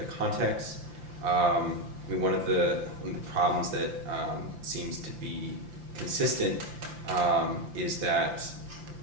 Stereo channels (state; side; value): late; left; 5.8 ms